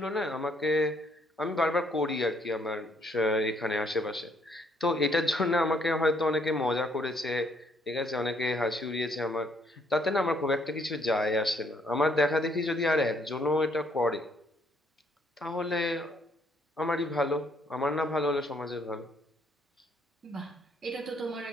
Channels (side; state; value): both; normal; correlation 0.68